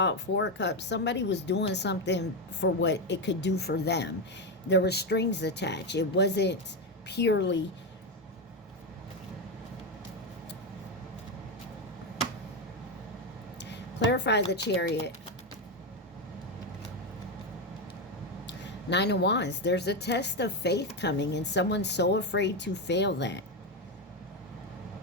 it, Four of Cups. Somebody was doing something for what it could do for them. There were strings attached. It wasn't purely... Clarify the Chariot. Nine of Wands. There's a test of faith coming, and someone's so afraid to fail that.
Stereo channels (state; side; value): normal; both; correlation 0.10